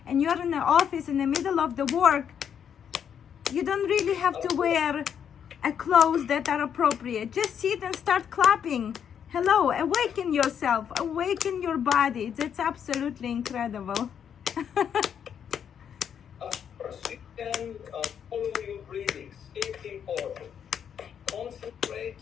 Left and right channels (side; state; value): right; quieter; 8.2 dB